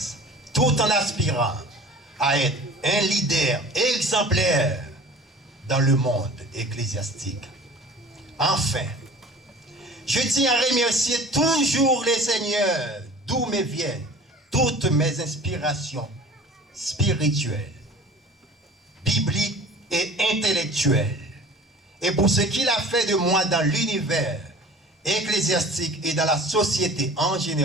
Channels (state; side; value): normal; both; correlation 0.43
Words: tout en aspirant à être un leader exemplaire dans le monde ecclésiastique. Enfin, je tiens à remercier toujours les seigneurs d'où me viennent toutes mes inspirations spirituelles, bibliques et intellectuelles, et pour ce qu'il a fait de moi dans l'univers ecclésiastique et dans la société en